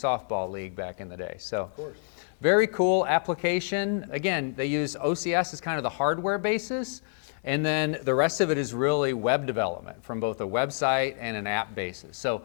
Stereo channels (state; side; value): silent; right; digital silence